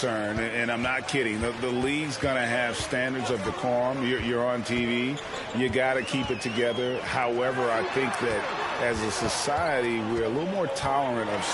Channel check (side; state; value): both; identical; correlation 1.00